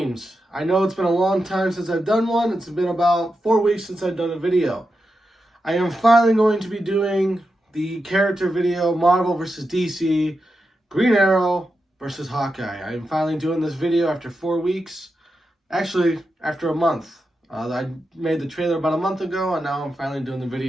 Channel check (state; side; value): normal; both; correlation 0.88